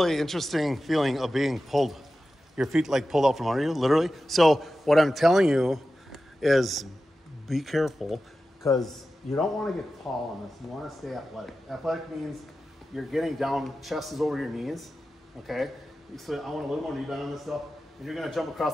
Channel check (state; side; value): normal; both; correlation 0.93